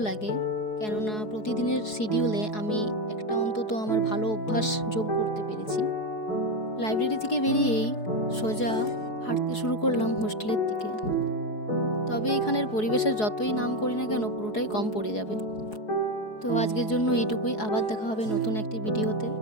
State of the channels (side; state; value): right; late; 4.7 ms